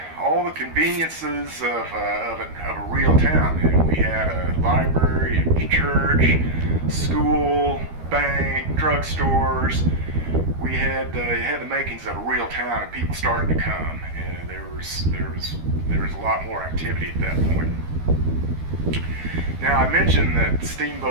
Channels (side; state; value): left; late; 12 ms